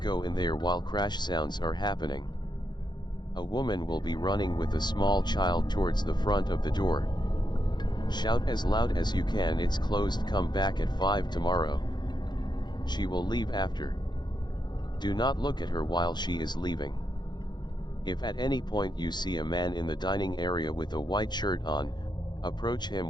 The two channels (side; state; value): right; late; 0.21 ms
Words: in there while crash sounds are happening. A woman will be running with a small child towards the front of the door. Shout as loud as you can, "It's closed, come back at 5 tomorrow." She will leave after. Do not look at her while she is leaving. If at any point you see a man in the dining area with a white shirt on, approach